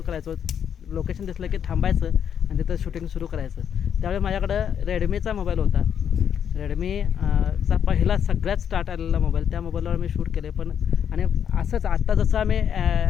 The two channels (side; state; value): right; quieter; 8.4 dB